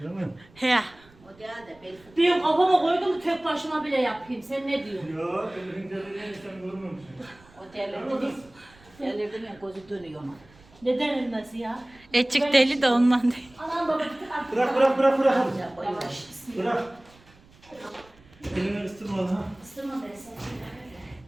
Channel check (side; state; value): right; noise; rumble, 27 dB below the sound